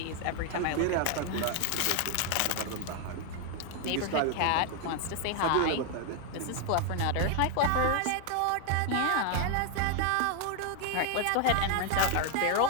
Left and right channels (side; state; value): both; different; correlation 0.01